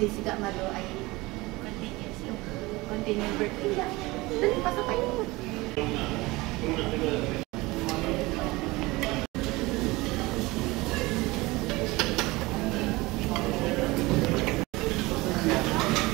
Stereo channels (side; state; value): left; quieter; 21.7 dB